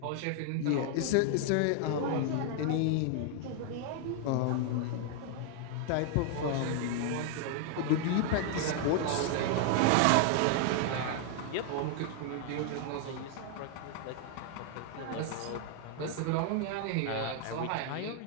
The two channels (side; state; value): both; different; correlation 0.00